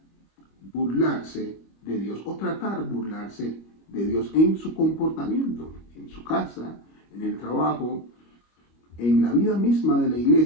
burlarse de Dios o tratar burlarse de Dios en su comportamiento, en su casa, en el trabajo, en la vida misma de la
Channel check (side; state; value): right; late; 25 ms